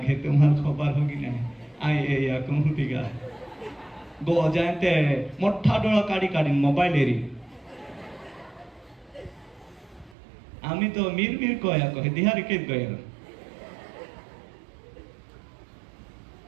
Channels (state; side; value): drops out; left; at 10.2 s